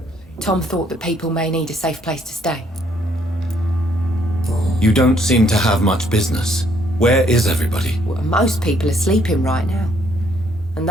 Tom thought that people may need a safe place to stay. You don't seem to have much business. Where is everybody? Well, most people are sleeping right now. And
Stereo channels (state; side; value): normal; both; correlation 0.68